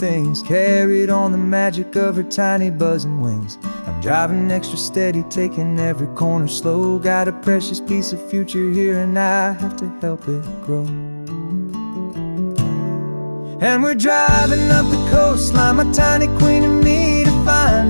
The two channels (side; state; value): both; inverted; correlation -1.00